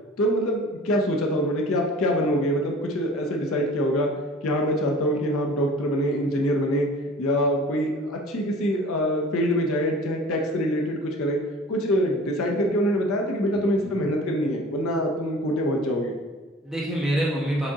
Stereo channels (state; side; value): normal; both; correlation 0.44